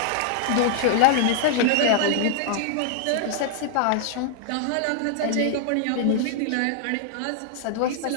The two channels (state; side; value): different; both; correlation -0.01